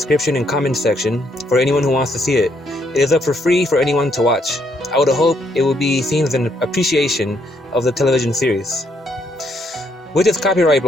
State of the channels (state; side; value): normal; both; correlation 0.73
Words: and comment section for anyone who wants to see it. It is up for free for anyone to watch. I would hope it will be seen as an appreciation of the television series. With this copyright